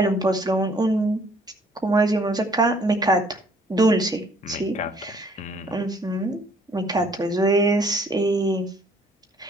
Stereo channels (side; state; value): both; normal; correlation 0.61